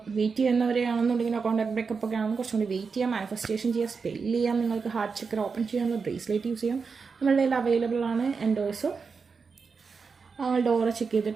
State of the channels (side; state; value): left; quieter; 5.2 dB